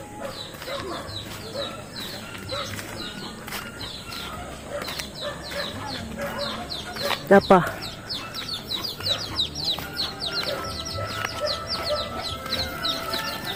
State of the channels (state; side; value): identical; both; correlation 1.00